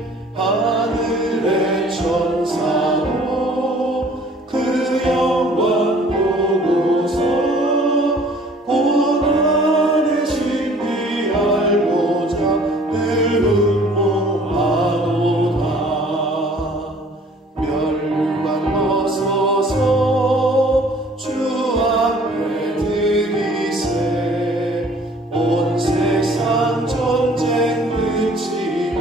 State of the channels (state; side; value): normal; both; correlation 0.54